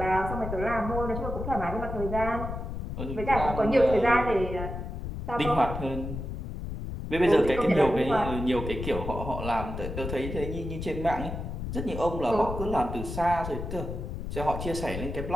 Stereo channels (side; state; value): left; noise; rumble, 6 dB below the sound